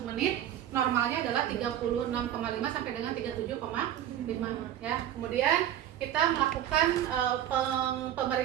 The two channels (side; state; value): left; quieter; 11.3 dB